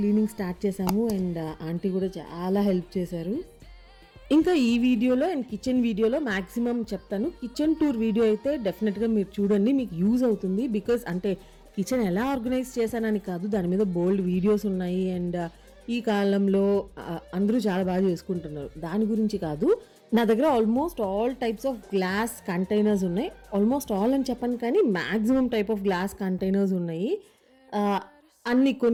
స్టార్ట్ చేసాము. అండ్ ఆంటీ కూడా చాలా హెల్ప్ చేశారు. ఇంకా ఈ వీడియోలో అండ్ కిచెన్ వీడియోలో మ్యాక్సిమం చెప్తాను. కిచెన్ టూర్ వీడియో అయితే డెఫినెట్గా మీరు చూడండి, మీకు యూజ్ అవుతుంది. బికాజ్ అంటే కిచెన్ ఎలా ఆర్గనైజ్ చేశానని కాదు, దాని మీద బోల్డ్ వీడియోస్ ఉన్నాయి. అండ్ ఈ కాలంలో అందరూ చాలా బాగా చేసుకుంటున్నారు, దాని గురించి కాదు. నా దగ్గర almost all types of glass containers ఉన్నాయి. ఆల్మోస్ట్ ఆల్ అని చెప్పను కానీ maximum type of glass containers ఉన్నాయి. అన్ని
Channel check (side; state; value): both; identical; correlation 1.00